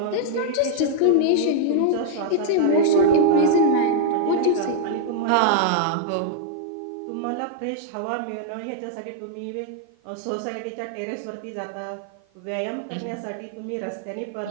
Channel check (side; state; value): both; different; correlation 0.00